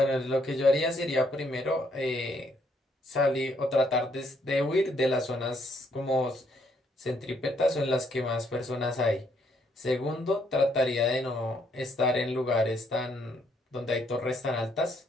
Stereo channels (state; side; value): normal; both; correlation 0.70